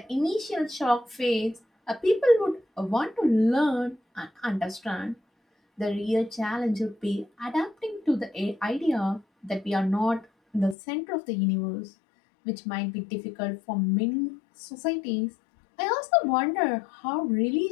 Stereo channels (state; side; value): drops out; right; at 10.8 s